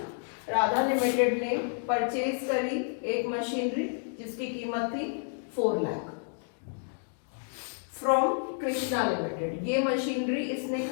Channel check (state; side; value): silent; right; digital silence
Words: Radha limited ने परचेज करी एक मशीनरी जिसकी कीमत थी 4 लाख फ्रॉम कृष्णा लिमिटेड। ये मशीनरी इसने